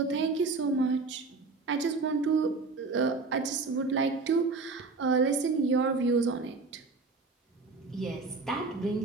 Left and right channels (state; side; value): quieter; left; 4.0 dB